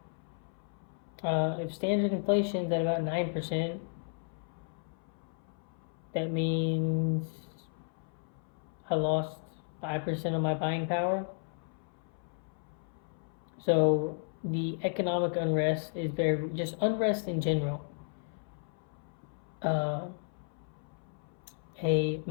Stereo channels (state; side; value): silent; right; 55 dB below the other